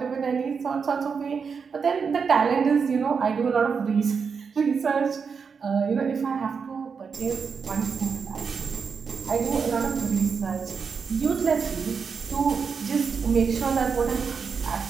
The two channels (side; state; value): left; quieter; 5.8 dB